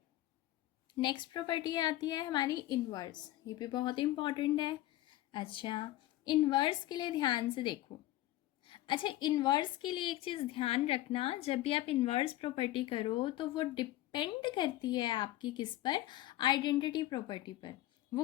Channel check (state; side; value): quieter; right; 15.5 dB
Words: नेक्स्ट प्रॉपर्टी आती है हमारी इन्वर्स, ये भी बहुत इंपॉर्टेंट है। अच्छा इन्वर्स के लिए ध्यान से देखो। अच्छा इन्वर्स के लिए एक चीज़ ध्यान रखना, जब भी आप इन्वर्स प्रॉपर्टी करो तो वो डिपेंड करती है आपकी किस पर, आइडेंटिटी प्रॉपर्टी पर।